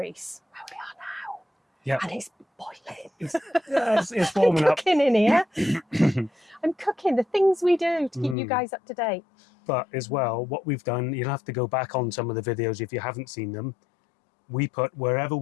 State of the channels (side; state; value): right; drops out; at 8.3 s